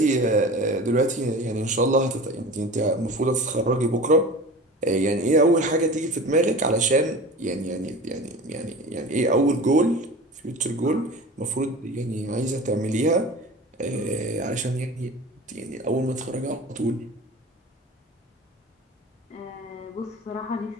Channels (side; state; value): both; normal; correlation 0.36